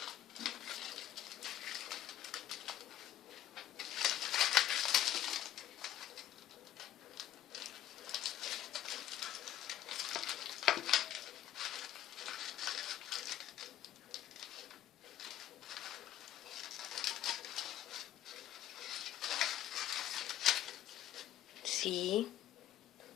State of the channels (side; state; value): right; quieter; 12.1 dB